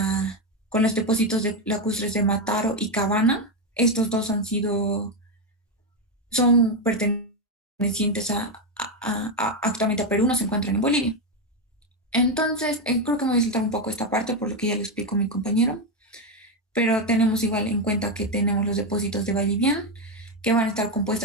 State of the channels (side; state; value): both; normal; correlation 0.08